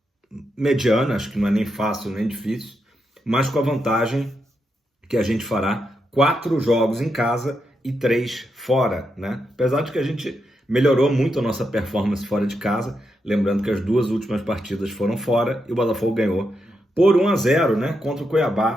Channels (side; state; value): both; normal; correlation 0.84